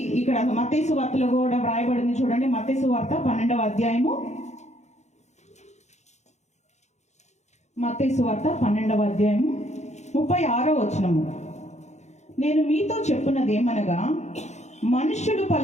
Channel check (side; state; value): right; late; 0.33 ms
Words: ఇక్కడ మత్తయి సువార్తలో కూడా వ్రాయబడింది. చూడండి, మత్తయి సువార్త 12వ అధ్యాయము, మత్తయి సువార్త 12వ అధ్యాయము 36వ వచనము. నేను మీతో చెప్పున్నది ఏమనగా, మనుష్యుడు